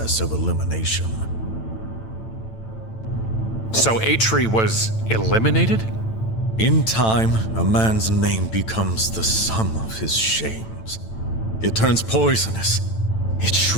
of elimination. So Atri was eliminated? In time, a man's name becomes the sum of his shames. It turns poisonous. It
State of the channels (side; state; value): right; late; 9.0 ms